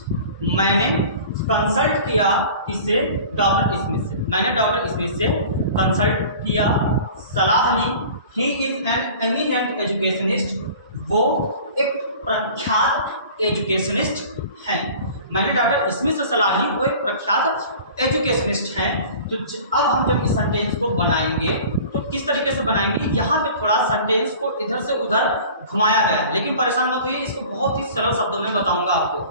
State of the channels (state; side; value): inverted; both; correlation -0.43